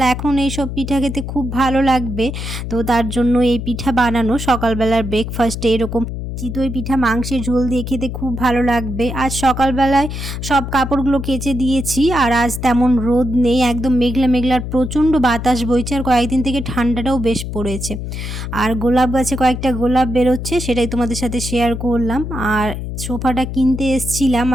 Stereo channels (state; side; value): noise; left; hum, 6 dB below the sound